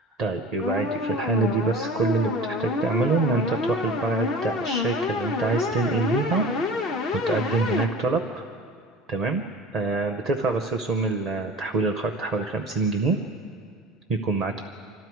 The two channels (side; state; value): both; normal; correlation 0.39